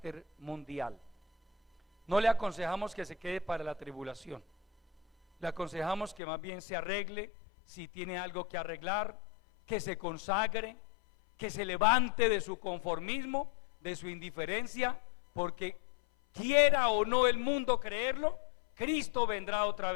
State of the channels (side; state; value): right; drops out; at 6.2 s